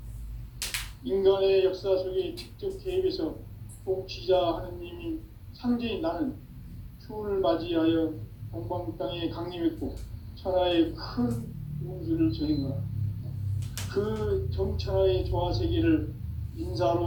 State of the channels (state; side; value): identical; both; correlation 1.00